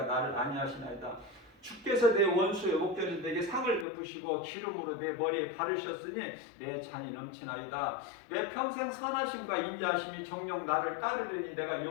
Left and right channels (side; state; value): right; drops out; at 3.9 s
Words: 나를 안위하시나이다. 주께서 내 원수의 목전에서 내게 상을 베푸시고 기름으로 내 머리에 바르셨으니 내 잔이 넘치나이다. 내 평생 선하심과 인자하심이 정녕 나를 따르리니 내가